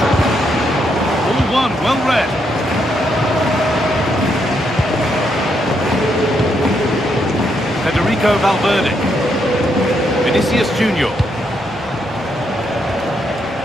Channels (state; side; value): normal; both; correlation 0.77